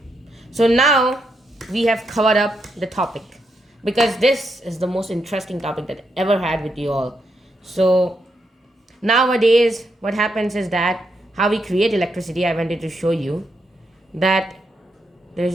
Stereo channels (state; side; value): normal; both; correlation 0.81